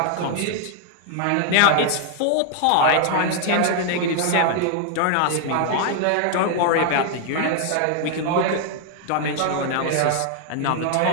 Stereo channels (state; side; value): different; both; correlation 0.00